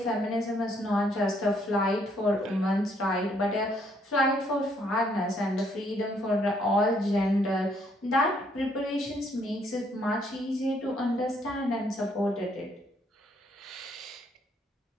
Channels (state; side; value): normal; both; correlation 0.69